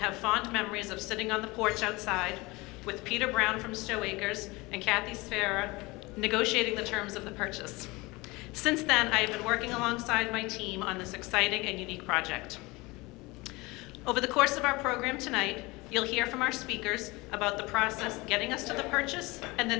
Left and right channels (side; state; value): right; quieter; 23.2 dB